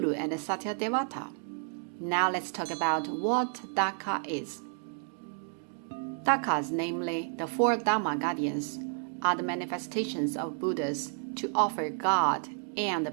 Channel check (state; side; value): silent; left; 57 dB below the other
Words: and Satyadevata. Now let's talk about what Dhaka is. Dhakas, namely the four Dharma guardians, are the manifestations of Buddhas to offer guard